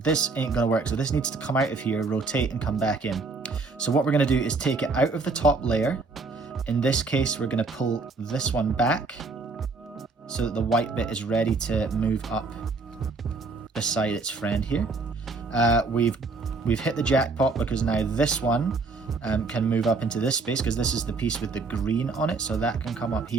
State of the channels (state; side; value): quieter; left; 3.9 dB